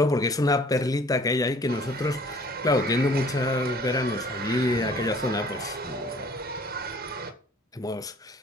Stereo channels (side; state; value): both; normal; correlation 0.54